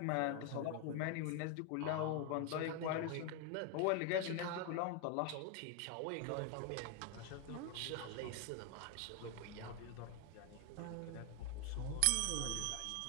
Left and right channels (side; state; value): both; different; correlation 0.01